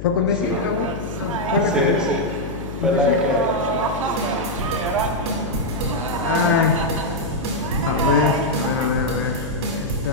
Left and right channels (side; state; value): left; noise; hum, 9 dB below the sound